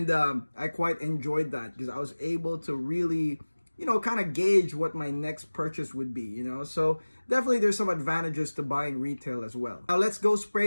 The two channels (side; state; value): both; inverted; correlation -1.00